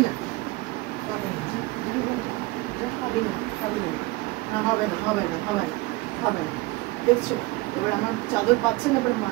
না পাবি না, পাবি না পাবি না, না হবে না হবে না হবে না হবে না। দেখছো এবার আমার চাদর পাচ্ছে না, এবার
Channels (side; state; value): left; quieter; 21.8 dB